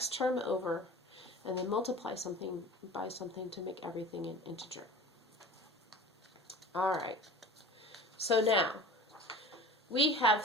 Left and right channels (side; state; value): both; normal; correlation 0.39